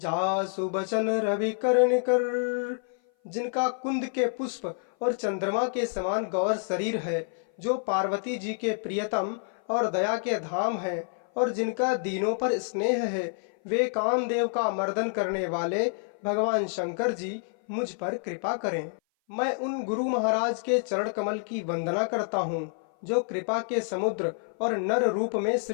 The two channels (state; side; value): silent; right; 56 dB below the other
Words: बचन रवि करण कर। जिनका कुंद के पुष्प और चंद्रमा के समान गौर शरीर है, जो पार्वती जी के प्रियतम और दया के धाम है, और जिनका दीनों पर स्नेह है, वे कामदेव का मर्दन करने वाले भगवान शंकर जी मुझ पर कृपा करें। मैं उन गुरु महाराज के चरण कमल की वंदना करता हूँ, जो कृपा के समुद्र और नर रूप में